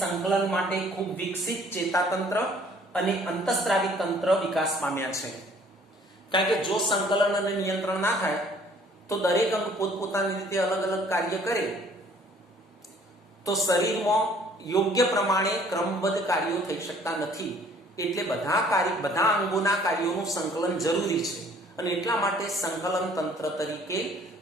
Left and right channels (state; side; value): normal; both; correlation 0.57